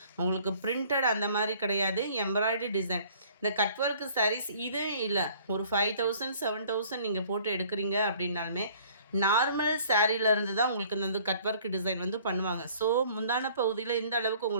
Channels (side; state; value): both; inverted; correlation -0.54